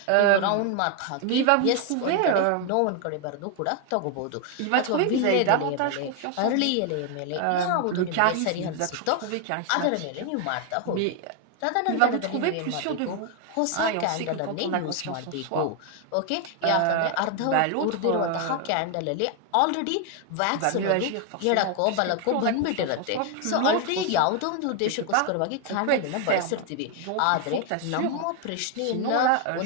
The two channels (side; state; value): both; different; correlation 0.01